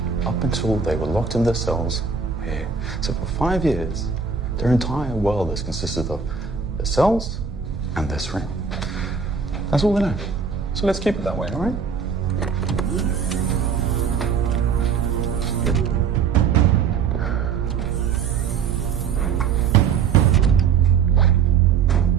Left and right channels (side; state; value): left; quieter; 6.1 dB